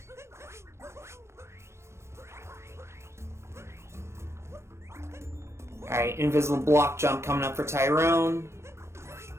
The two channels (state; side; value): late; left; 0.13 ms